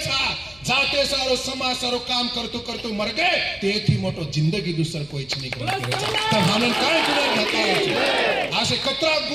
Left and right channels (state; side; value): noise; left; hum, 26 dB below the sound